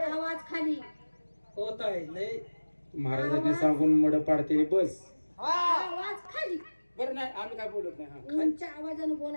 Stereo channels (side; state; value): both; inverted; correlation -1.00